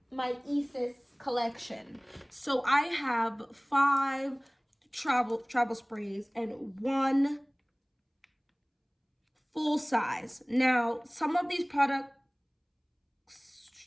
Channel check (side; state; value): both; identical; correlation 1.00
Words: my ESAS collection. So I have 5 travel sprays and 1 full size. Now, some of these products,